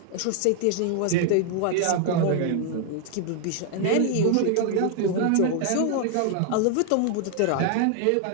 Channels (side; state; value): both; different; correlation 0.00